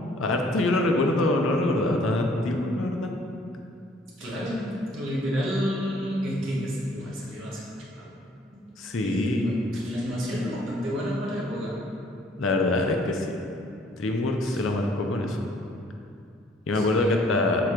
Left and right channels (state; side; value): normal; both; correlation 0.60